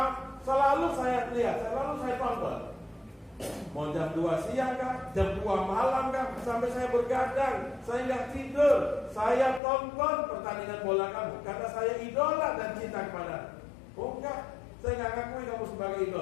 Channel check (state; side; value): drops out; right; at 9.6 s